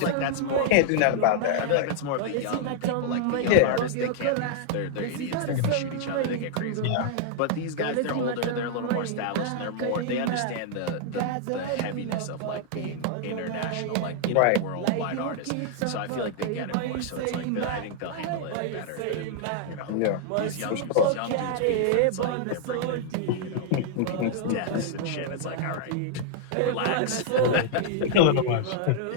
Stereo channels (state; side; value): different; both; correlation -0.01